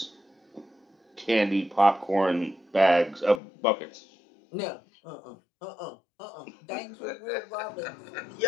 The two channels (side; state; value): right; drops out; at 3.4 s